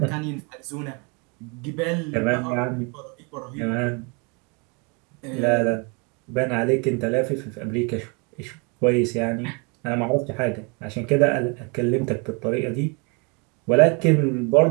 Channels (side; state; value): left; quieter; 32.1 dB